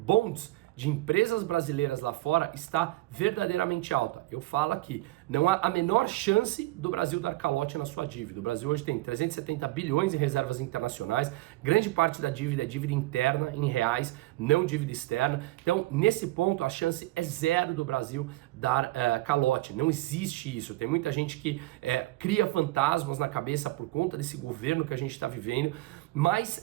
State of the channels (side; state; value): left; quieter; 18.7 dB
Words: de empresas brasileiras lá fora está verdadeiramente alta. Eu falo aqui, não há a menor chance do Brasil dar calote na sua dívida. O Brasil hoje tem 370 bilhões em reservas internacionais, grande parte da dívida é dívida interna, em reais, não dívida externa. Então, nesse ponto, a chance é zero do Brasil dar calote. Não existe isso. Tem muita gente que cria fantasmas na cabeça por conta desse governo que a gente está vivendo, mas